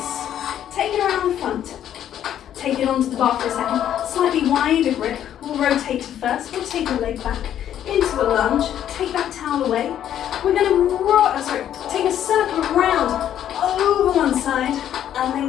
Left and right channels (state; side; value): quieter; right; 10.6 dB